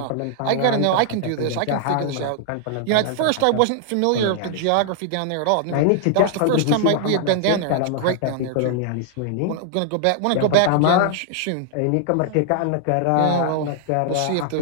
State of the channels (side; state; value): both; different; correlation -0.01